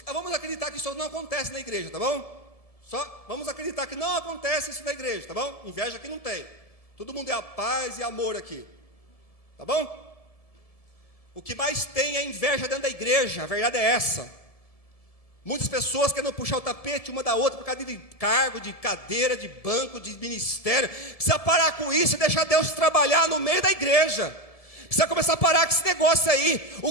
acreditar que isso não acontece na igreja, tá bom? Só vamos acreditar que não acontece isso na igreja, tá bom? Inveja aqui não tem. Todo mundo é a paz e amor aqui. Tá bom? O que mais tem é inveja dentro da igreja, a verdade é essa. Muitas pessoas querendo puxar o tapete uma da outra por causa de cargo, de cadeira, de banco, de ministério. Precisa parar com isso e deixar Deus trabalhar no meio da igreja. Precisa começar a parar com esse negócio aí.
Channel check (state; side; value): late; right; 1.7 ms